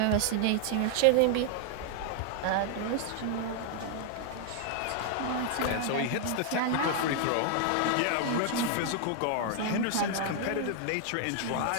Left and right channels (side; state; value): both; different; correlation 0.00